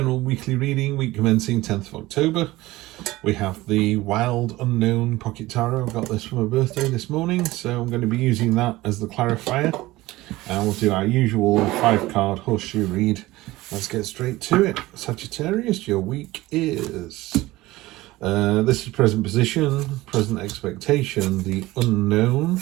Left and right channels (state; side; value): quieter; left; 18.5 dB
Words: weekly reading, week commencing 10th of October. We have the Wild Unknown Pocket Tarot. I got this for my birthday this morning, so I'm going to be using that as the clarifier. And we'll do our usual 5-card horseshoe read. Let's get straight to it. Sagittarius, your week is... this is present position, present expectation, the unknown,